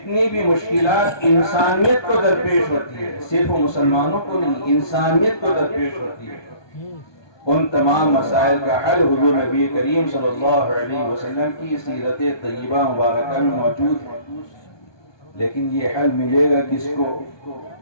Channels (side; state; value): right; late; 1.2 ms